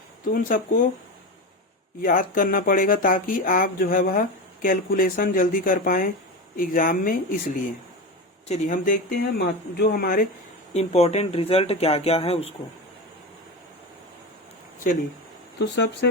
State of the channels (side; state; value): both; normal; correlation 0.22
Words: तो उन सबको याद करना पड़ेगा ताकि आप जो है वह कैलकुलेशन जल्दी कर पाए एग्जाम में। इसलिए चलिए हम देखते हैं जो हमारे इम्पोर्टेंट रिजल्ट क्या क्या है उसको। चलिए तो